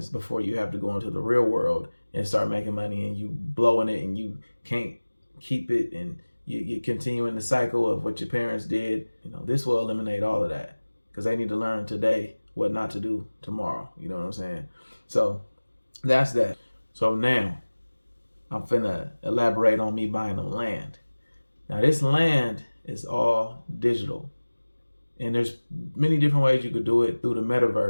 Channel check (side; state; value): both; inverted; correlation -1.00